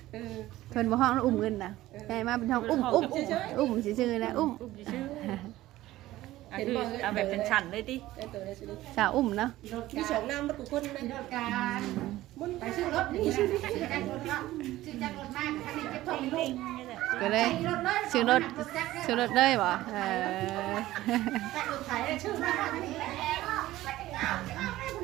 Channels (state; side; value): quieter; left; 16.0 dB